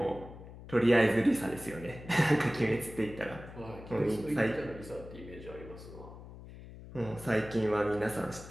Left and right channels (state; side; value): noise; left; hum, 15 dB below the sound